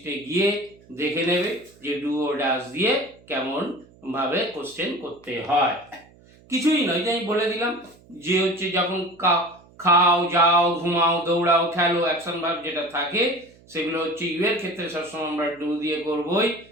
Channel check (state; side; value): noise; right; hum, 27 dB below the sound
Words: গিয়ে দেখে নেবে যে ডু ও ডাজ দিয়ে কেমন ভাবে কোশ্চেন করতে হয়। কিছুই নয়, যে আমি বলে দিলাম যে যখন খাও, যাও, ঘুমাও, দৌড়াও, খেলো, অ্যাকশন ভার্ব যেটা থাকে সেগুলো ইউ এর ক্ষেত্রে সবসময় আমরা ডু দিয়ে করবই,